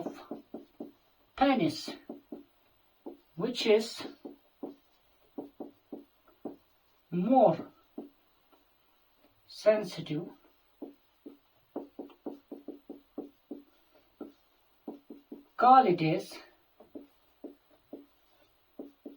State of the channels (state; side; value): identical; both; correlation 1.00